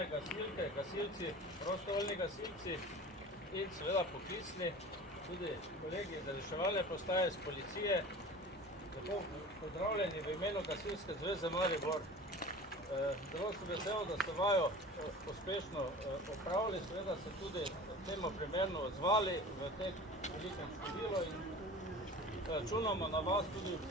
gasilke, gasilci, prostovoljni gasilci in seveda poklicni, tudi kolegi iz reševalne postaje, iz policije. Lepo pozdravljeni v imenu Gasilske zveze Maribor. Zelo sem vesel, da ste vajo uspešno opravili, seveda se tudi temu primerno odzvali v tem velikem številu in računamo na vas tudi v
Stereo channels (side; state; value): both; normal; correlation 0.38